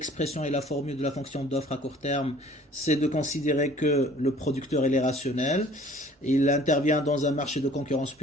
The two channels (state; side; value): normal; both; correlation 0.52